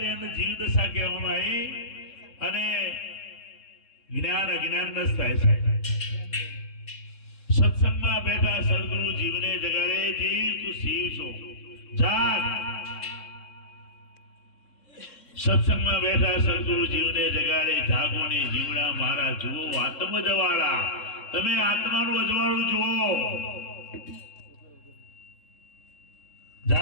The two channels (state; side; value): late; right; 3.7 ms